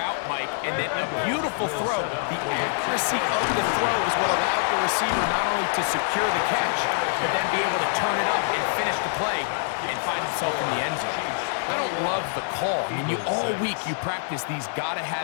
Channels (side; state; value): right; silent; digital silence